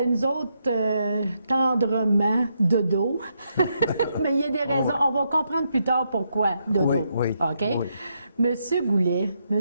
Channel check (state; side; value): inverted; both; correlation -0.79